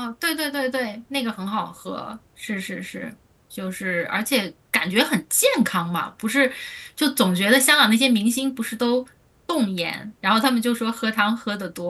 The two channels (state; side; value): identical; both; correlation 1.00